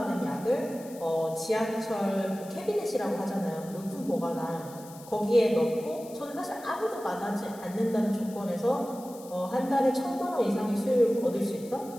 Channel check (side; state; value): left; noise; hiss, 20 dB below the sound